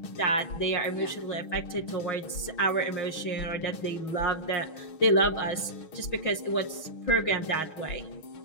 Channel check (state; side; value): late; right; 6.3 ms